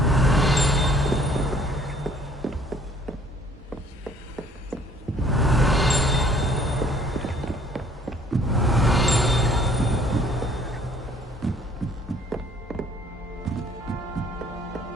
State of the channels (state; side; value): normal; both; correlation 0.58